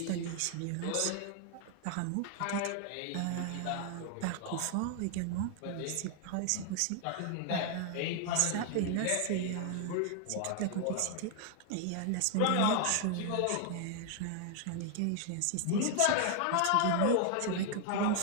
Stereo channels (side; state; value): both; different; correlation 0.00